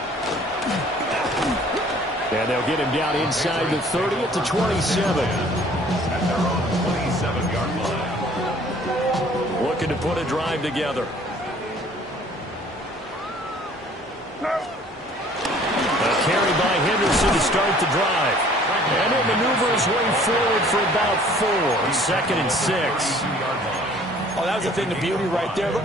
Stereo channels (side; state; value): both; normal; correlation 0.54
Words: And they'll get him down inside the 30 at the 27. At their own 27-yard line. Looking to put a drive together. A carry by Henderson to start the drive. And he'll maneuver his way forward for about 4. 2nd and 6. Oh, that was a thing of beauty right there.